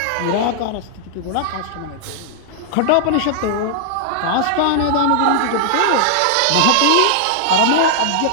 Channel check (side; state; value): both; different; correlation -0.01